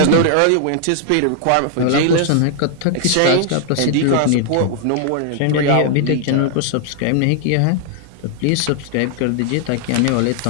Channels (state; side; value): different; both; correlation -0.01